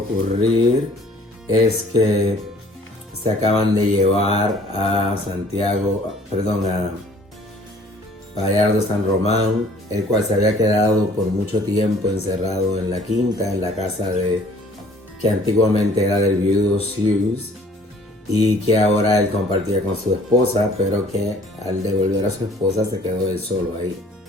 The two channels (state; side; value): normal; both; correlation 0.55